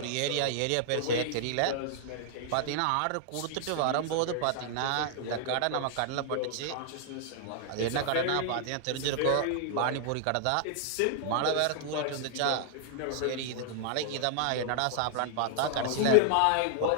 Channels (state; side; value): different; both; correlation -0.01